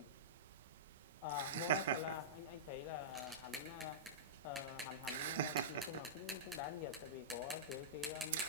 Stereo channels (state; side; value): normal; both; correlation -0.16